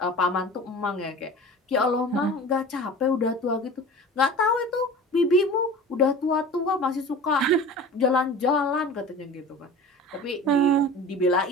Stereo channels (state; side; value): normal; both; correlation 0.37